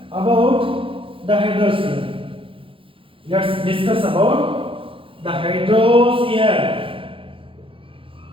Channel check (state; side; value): late; left; 0.26 ms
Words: about the hydrosphere. Let's discuss about the hydrosphere.